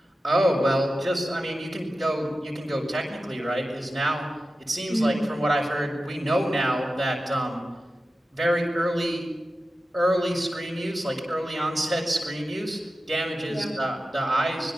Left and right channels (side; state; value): both; normal; correlation 0.93